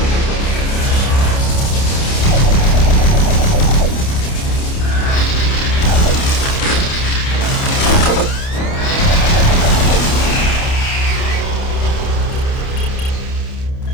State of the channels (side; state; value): right; late; 29 ms